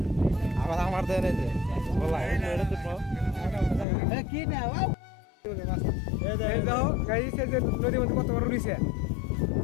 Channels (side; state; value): right; drops out; at 3.9 s